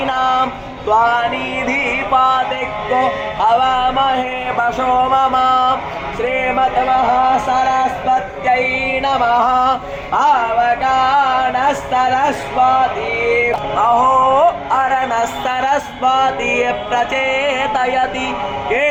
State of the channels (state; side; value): identical; both; correlation 1.00